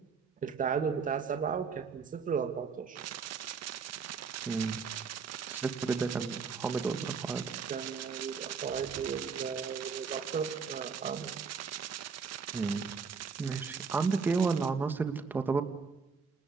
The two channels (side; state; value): left; quieter; 5.6 dB